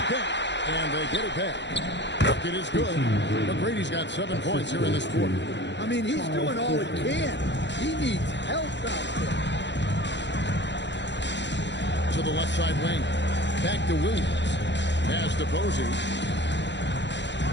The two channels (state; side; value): late; right; 0.52 ms